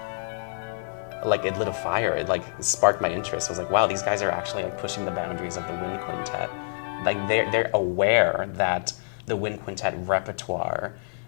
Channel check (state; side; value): silent; right; 56 dB below the other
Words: like, it lit a fire. It like sparked my interest. I was like, wow, these guys are actually like pushing the boundaries of the wind quintet. Like they're aware that the wind quintet repertoire